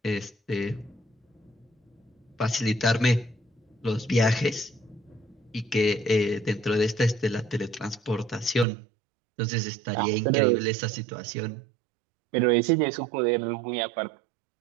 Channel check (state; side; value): drops out; left; at 8.7 s